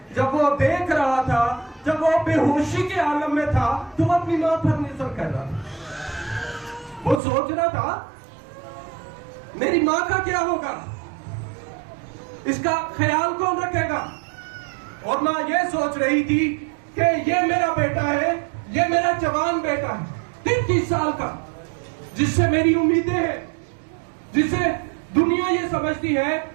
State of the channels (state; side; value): drops out; left; at 7.2 s